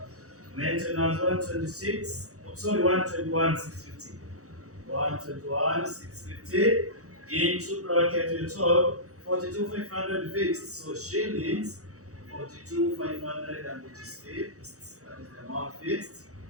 maintenance 126, sorry, 121 650. 121 650 into bracket we told 42,500 fixed. So shillings 42,500 and it is fixed. That is the amount fixed.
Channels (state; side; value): late; left; 0.65 ms